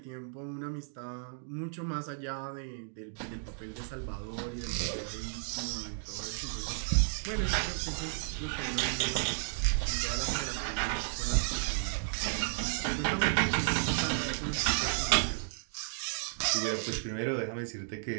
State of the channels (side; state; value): left; silent; digital silence